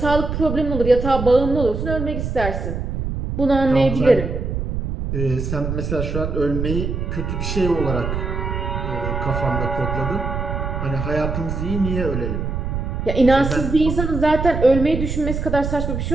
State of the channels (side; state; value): right; noise; rumble, 3 dB below the sound